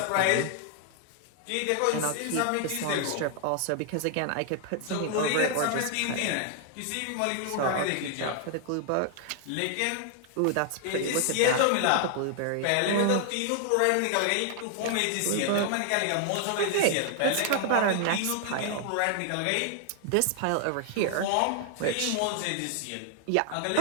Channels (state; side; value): different; both; correlation 0.00